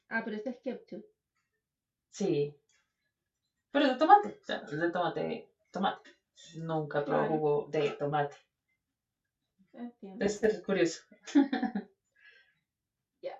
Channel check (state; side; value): identical; both; correlation 1.00